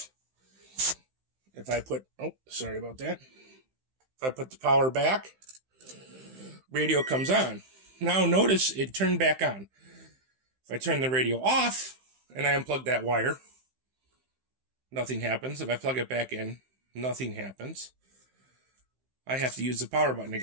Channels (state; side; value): late; left; 15 ms